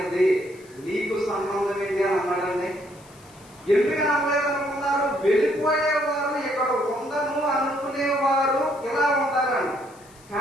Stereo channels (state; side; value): noise; left; hiss, 26 dB below the sound